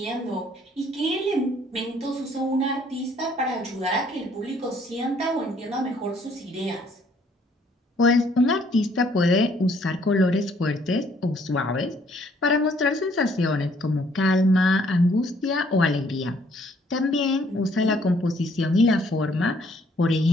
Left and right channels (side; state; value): both; normal; correlation 0.64